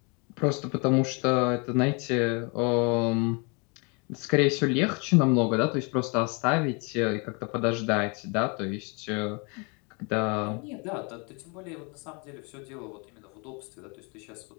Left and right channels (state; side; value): quieter; right; 32.6 dB